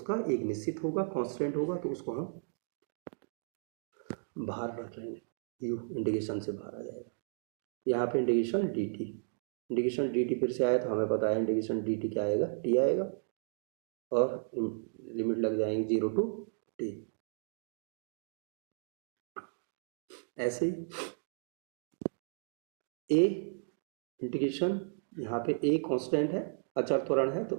एक निश्चित होगा, कांस्टेंट होगा, तो उसको हम बाहर रख लेंगे, u इंटीग्रेशन से बाहर आ जाएगा। यहाँ पे integration D T, integration D T फिर से आया तो हमें पता है इंटीग्रेशन डी टी क्या आएगा, टी आएगा, और लिमिट लग जाएंगे 0 to t। ऐसे ए इंटीग्रेशन, यहाँ पे ए कांस्टेंट है, अचर त्वरण है,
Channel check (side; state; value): left; silent; digital silence